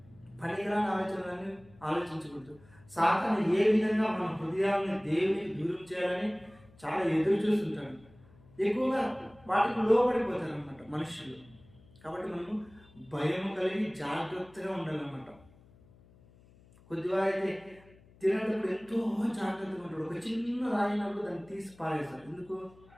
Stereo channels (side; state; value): left; noise; hum, 26 dB below the sound